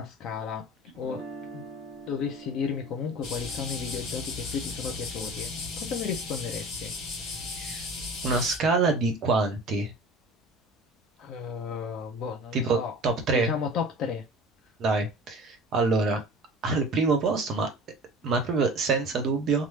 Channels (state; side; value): normal; both; correlation 0.40